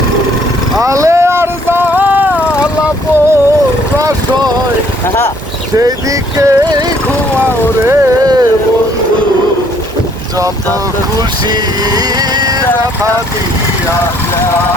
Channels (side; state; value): both; normal; correlation 0.63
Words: আলে আর সেই দিকে ঘুমাও রে বন্ধু, যত খুশি রাখা দিয়া